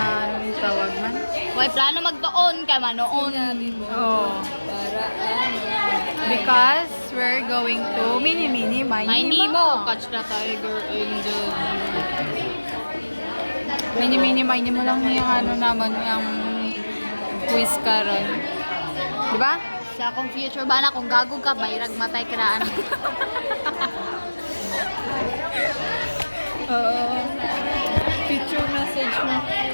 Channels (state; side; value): inverted; both; correlation -1.00